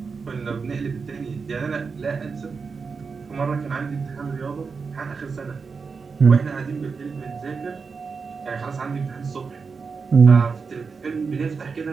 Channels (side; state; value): left; quieter; 5.1 dB